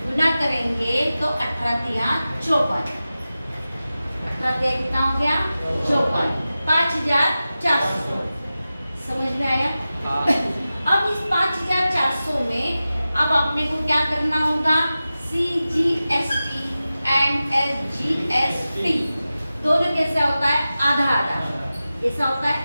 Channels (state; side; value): inverted; both; correlation -0.95